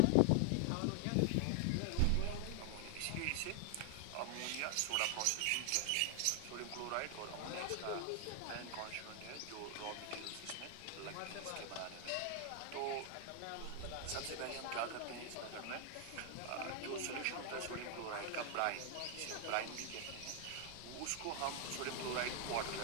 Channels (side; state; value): both; different; correlation 0.00